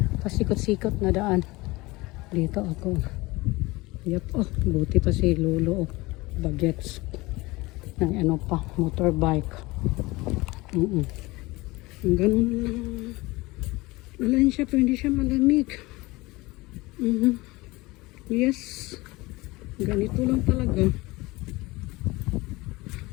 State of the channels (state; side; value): quieter; right; 21.7 dB